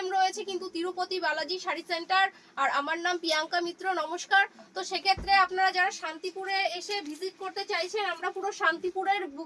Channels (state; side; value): identical; both; correlation 1.00